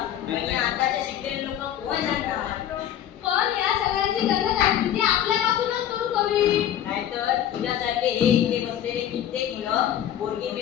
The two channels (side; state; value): right; quieter; 10.8 dB